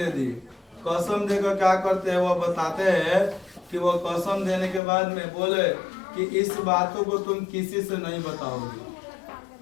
दी। कसम देकर क्या करते हैं, वो बताते हैं कि वो कसम देने के बाद में बोले कि इस बातों को तुम किसी से नहीं बताओगे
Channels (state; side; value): drops out; right; at 4.8 s